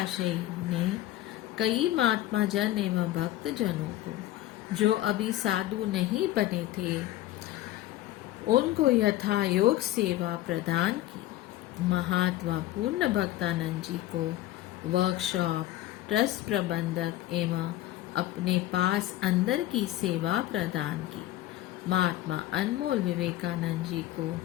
ने कई महात्मा जन एवं भक्त जनों को जो अभी साधु नहीं बने थे उनको यथा योग सेवा प्रदान की। महात्मा पूर्ण भक्तानंद जी को वर्कशॉप, ट्रस्ट प्रबंधक एवं अपने पास अंदर की सेवा प्रदान की। महात्मा अनमोल विवेकानंद जी को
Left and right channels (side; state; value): right; quieter; 14.8 dB